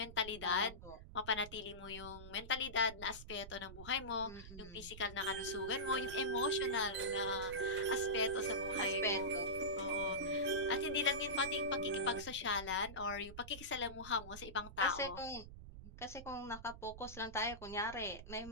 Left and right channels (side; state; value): right; noise; rumble, 13 dB below the sound